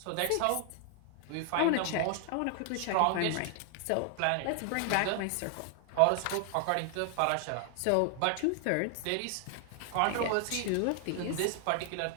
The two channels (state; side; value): different; both; correlation 0.00